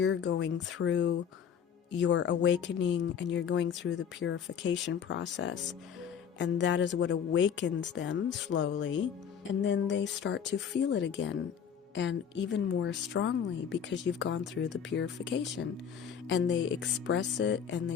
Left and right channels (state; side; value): quieter; right; 7.8 dB